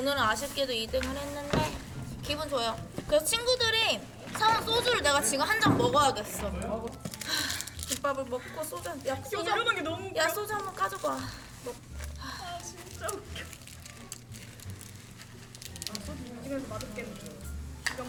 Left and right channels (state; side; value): identical; both; correlation 1.00